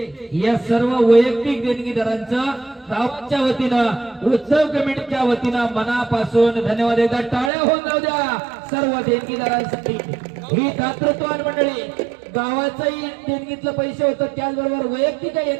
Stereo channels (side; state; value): left; drops out; at 7.5 s